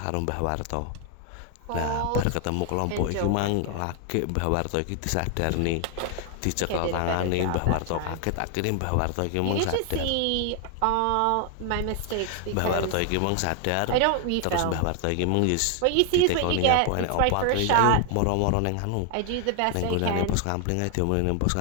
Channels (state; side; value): different; both; correlation 0.00